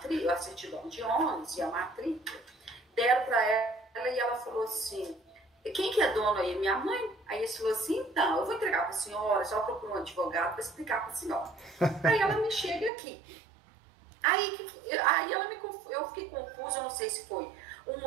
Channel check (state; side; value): drops out; left; at 12.9 s